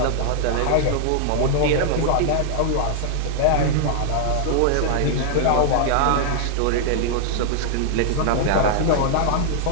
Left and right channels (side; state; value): both; different; correlation -0.01